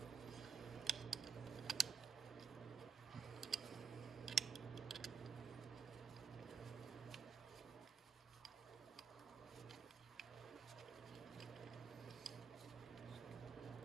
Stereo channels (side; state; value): left; quieter; 6.0 dB